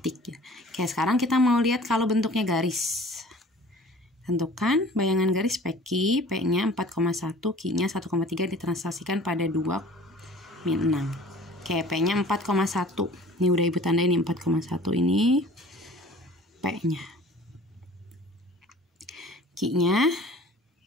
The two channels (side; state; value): both; normal; correlation 0.47